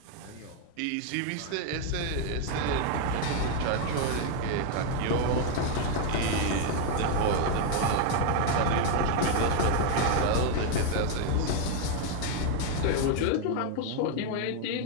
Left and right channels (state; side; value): different; both; correlation 0.00